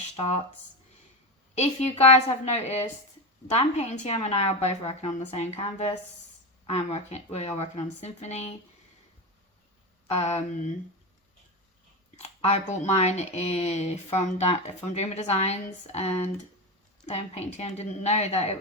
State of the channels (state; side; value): normal; both; correlation 0.18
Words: starts. If you guys have noticed, Dan Painting TM and I are both working on the same canvas. We are working on Symphony. I bought mine from Dreamer Designs, and Dan Painting TM didn't know that it